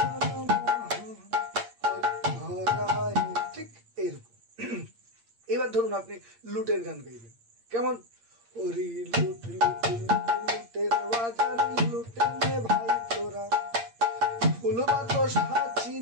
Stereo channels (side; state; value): left; late; 8.7 ms